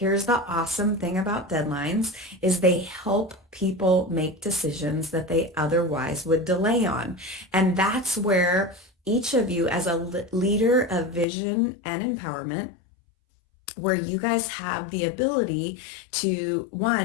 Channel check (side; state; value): right; drops out; at 11.2 s